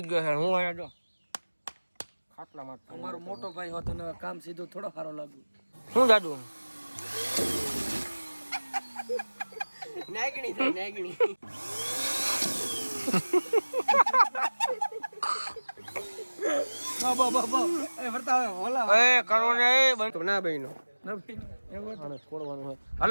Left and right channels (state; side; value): inverted; both; correlation -1.00